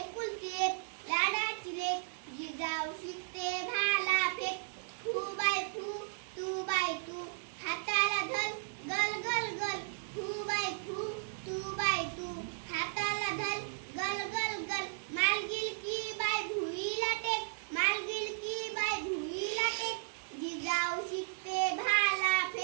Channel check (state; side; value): silent; left; digital silence